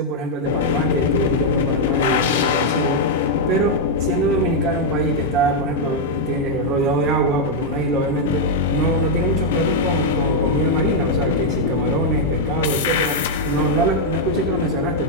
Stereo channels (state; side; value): normal; both; correlation -0.03